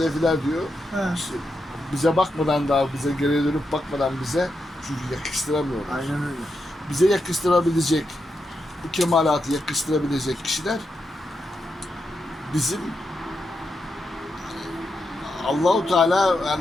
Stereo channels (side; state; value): both; normal; correlation 0.85